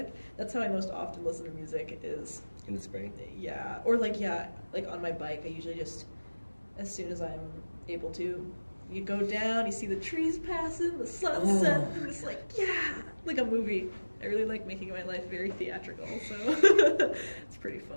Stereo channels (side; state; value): both; inverted; correlation -1.00